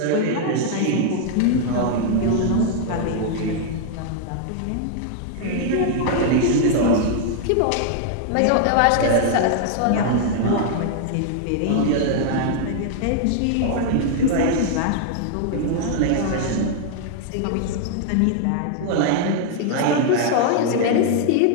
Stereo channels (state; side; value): different; both; correlation 0.00